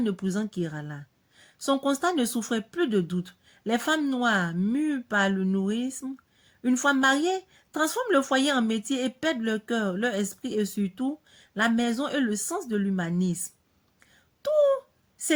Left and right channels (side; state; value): both; identical; correlation 1.00